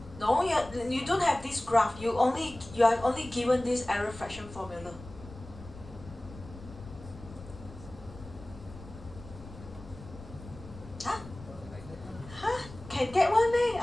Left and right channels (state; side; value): noise; left; rumble, 16 dB below the sound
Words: No, you don't have this graph. You are only given this error fraction formula. Can get one day?